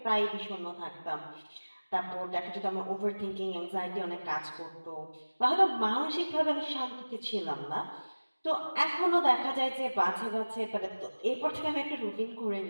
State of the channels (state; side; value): inverted; both; correlation -1.00